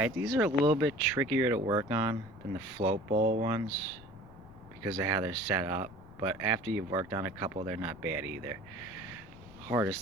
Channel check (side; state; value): left; noise; rumble, 20 dB below the sound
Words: these are a little bit trickier to work on than the float bowl ones because of how they're set up, but after you've worked on a couple, they're not bad either.